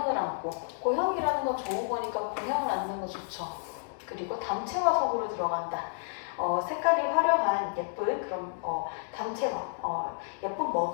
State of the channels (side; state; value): right; silent; digital silence